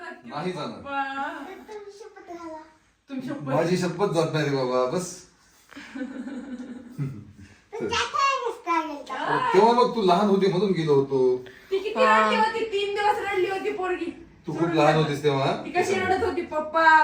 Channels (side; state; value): both; identical; correlation 1.00